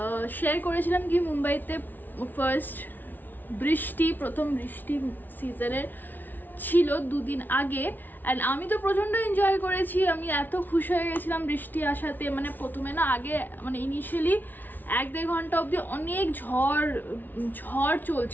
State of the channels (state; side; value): late; right; 0.086 ms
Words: শেয়ার করেছিলাম কি মুম্বাইতে ফার্স্ট বৃষ্টি, প্রথম বৃষ্টি সিজনের ছিল দুদিন আগে, অ্যান্ড আমি তো প্রচণ্ড এনজয় করেছি। আমি এত খুশি হয়ে গেছিলাম বৃষ্টি আসাতে। মানে প্রথমে না আগে মানে ইনিশিয়ালি 1-1.5 ঘন্টা অবধি অনেক ঝড়